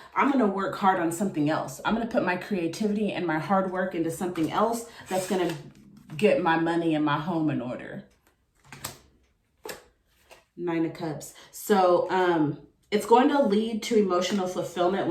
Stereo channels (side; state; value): both; identical; correlation 1.00